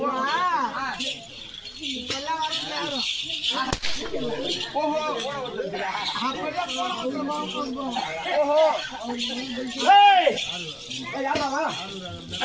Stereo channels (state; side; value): identical; both; correlation 1.00